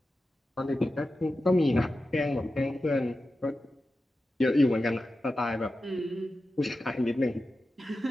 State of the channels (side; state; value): both; normal; correlation 0.92